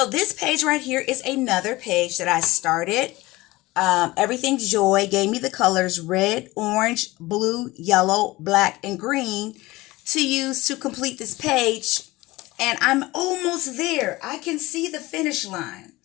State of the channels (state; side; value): quieter; right; 20.1 dB